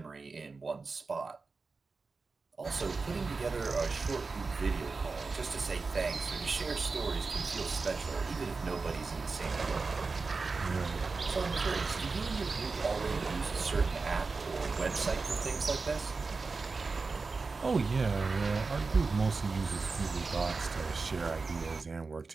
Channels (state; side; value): quieter; left; 4.2 dB